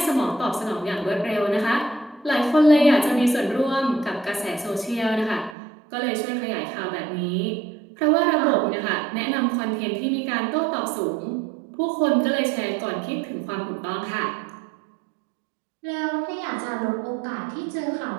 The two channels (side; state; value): left; drops out; at 5.6 s